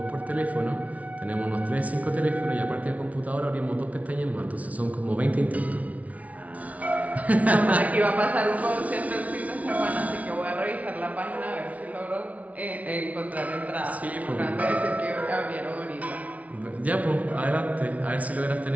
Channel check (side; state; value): left; late; 0.068 ms